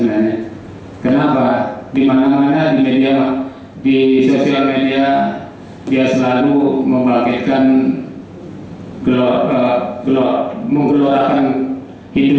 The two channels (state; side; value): identical; both; correlation 1.00